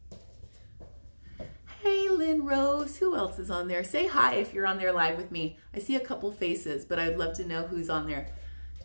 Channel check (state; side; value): inverted; both; correlation -1.00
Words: Hey, Lynn Rose, who else is on there? Say hi if you're on there live with me. I see a couple faces, but I'd love to know who's on there.